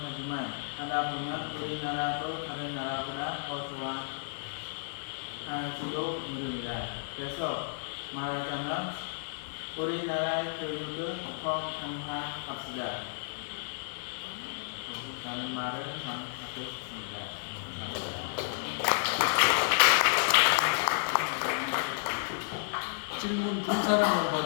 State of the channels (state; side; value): silent; right; digital silence